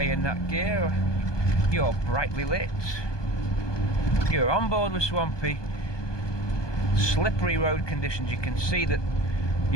in that gear. You're brightly lit. You're on board with Swampy. Slippery road conditions, you can see that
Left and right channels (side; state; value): right; late; 1.2 ms